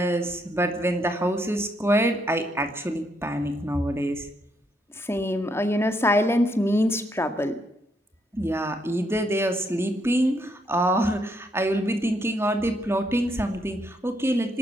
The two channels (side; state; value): both; normal; correlation 0.75